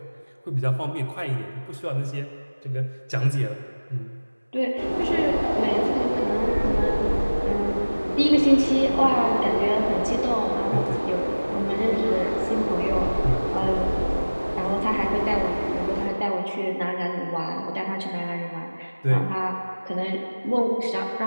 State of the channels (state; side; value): inverted; both; correlation -1.00